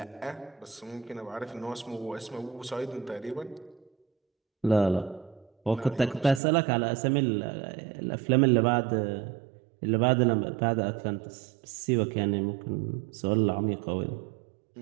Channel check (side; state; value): left; drops out; at 6.4 s